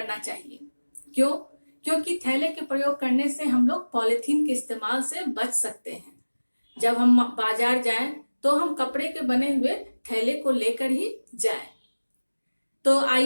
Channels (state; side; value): inverted; both; correlation -1.00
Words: चाहिए। क्यों? क्योंकि थैले के प्रयोग करने से हम लोग पॉलिथीन के इस्तेमाल से बच सकते हैं। जब हम बाजार जाएं तो हम कपड़े के बने हुए थैले को लेकर ही जाएं। तो